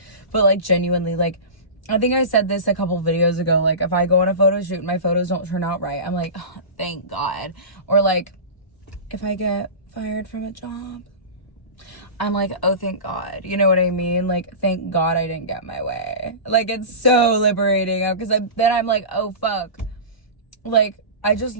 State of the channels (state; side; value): late; right; 1.0 ms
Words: But like genuinely, like I think I said this a couple videos ago, like if I go on a photo shoot and my photos don't turn out right, I'm like, oh, thank God. Or like if I get fired from a job, I'm like, oh, thank God. You know what I mean? Like, thank God I didn't get my way. Like, it's so liberating, because then I'm like, oh, fuck. Like, I just